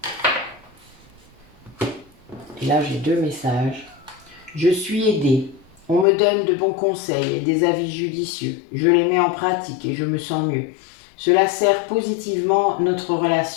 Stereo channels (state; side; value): drops out; right; at 6.1 s